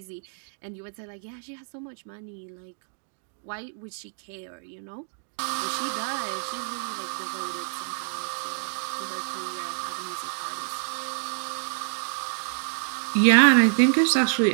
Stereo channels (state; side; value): silent; left; 60 dB below the other